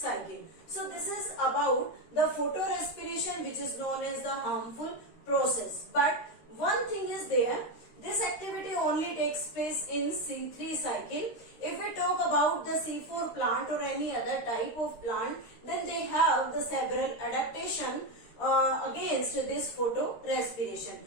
So this is about the photorespiration, which is known as the harmful process. But one thing is there, this activity only takes place in C3 cycle. If we talk about the C4 plant or any other type of plant, then they have the several adaptation against this photorespiration.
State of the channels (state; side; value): late; right; 13 ms